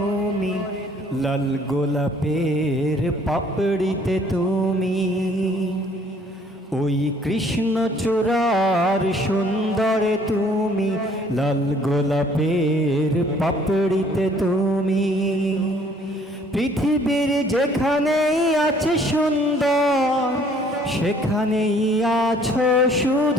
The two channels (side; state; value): both; normal; correlation 0.59